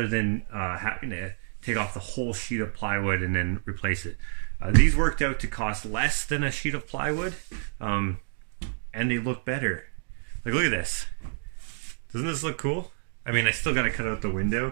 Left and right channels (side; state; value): left; silent; digital silence